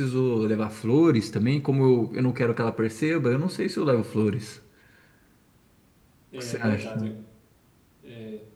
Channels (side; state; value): both; identical; correlation 1.00